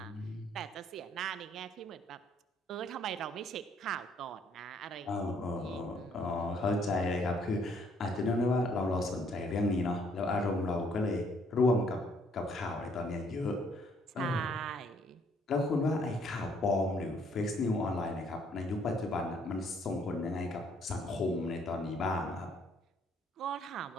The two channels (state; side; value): normal; both; correlation 0.65